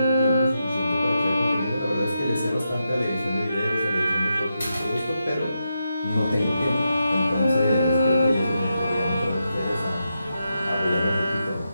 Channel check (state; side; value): inverted; both; correlation -0.86